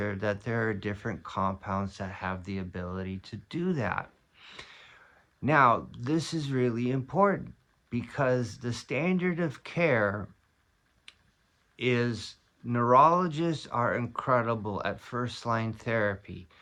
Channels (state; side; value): identical; both; correlation 1.00